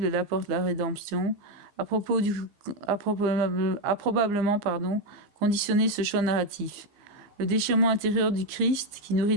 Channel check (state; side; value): late; left; 15 ms